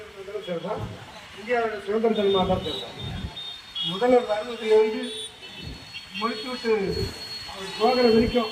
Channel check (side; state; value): both; identical; correlation 1.00